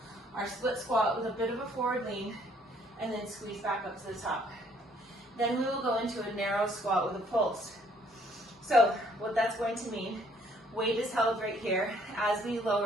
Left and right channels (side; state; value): both; normal; correlation 0.63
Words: our split squat with a bit of a forward lean, and then squeeze back up to the top. Then we will go into a narrow squat with a pulse. So what that's going to mean, weight is held right here. As we